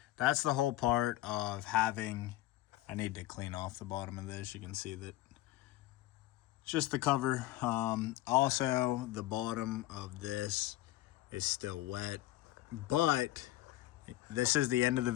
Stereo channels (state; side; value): quieter; right; 16.2 dB